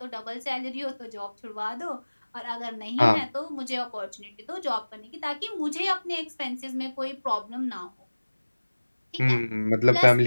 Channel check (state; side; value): inverted; both; correlation -1.00